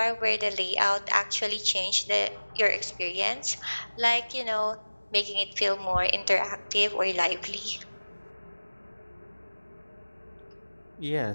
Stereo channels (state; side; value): inverted; both; correlation -1.00